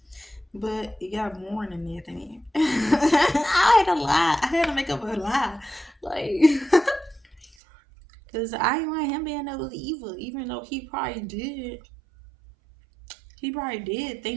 but it got more than that. Thing. I had to lie. I had to make up a lie, like, cause I didn't want him being that was evil, even though he probably did. He probably did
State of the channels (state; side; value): drops out; left; at 7.6 s